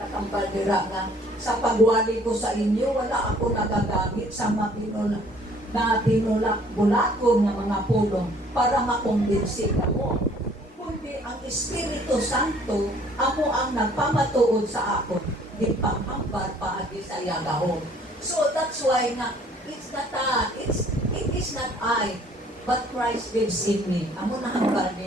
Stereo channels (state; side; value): normal; both; correlation 0.58